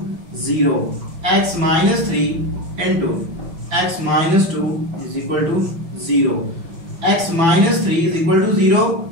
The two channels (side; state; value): left; late; 6.0 ms